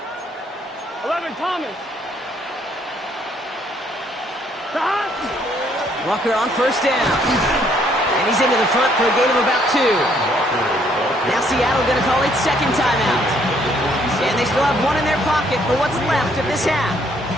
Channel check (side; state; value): both; normal; correlation 0.67